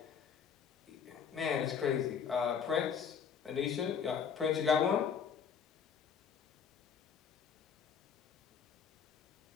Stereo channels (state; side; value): quieter; right; 7.0 dB